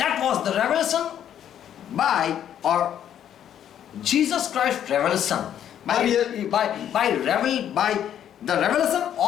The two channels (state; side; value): quieter; right; 10.0 dB